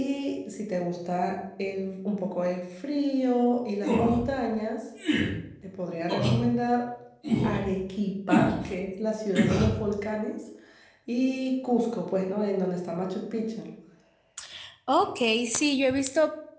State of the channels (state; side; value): identical; both; correlation 1.00